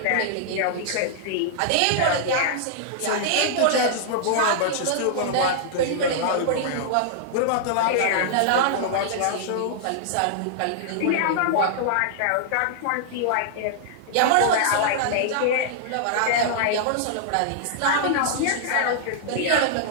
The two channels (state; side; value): different; both; correlation -0.01